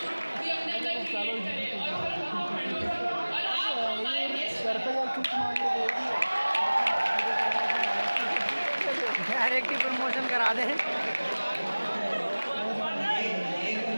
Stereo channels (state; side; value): inverted; both; correlation -1.00